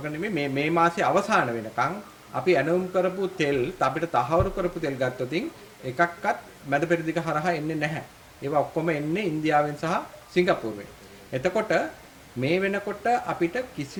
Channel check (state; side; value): identical; both; correlation 1.00